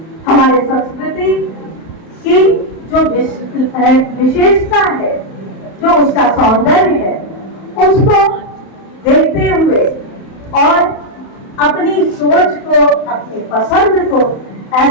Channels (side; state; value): right; late; 31 ms